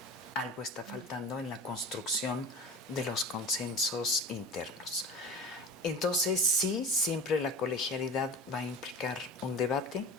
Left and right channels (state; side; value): normal; both; correlation 0.34